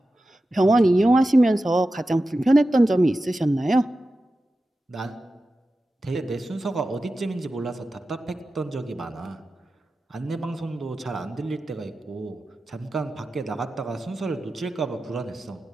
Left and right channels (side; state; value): both; normal; correlation 0.93